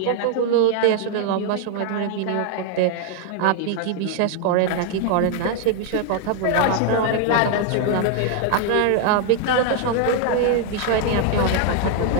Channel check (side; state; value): both; different; correlation 0.00